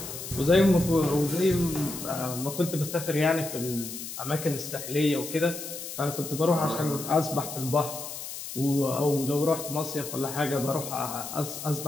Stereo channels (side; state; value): left; noise; hiss, 9 dB below the sound